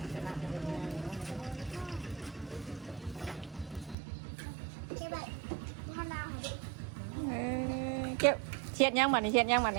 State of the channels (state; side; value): drops out; left; at 4.0 s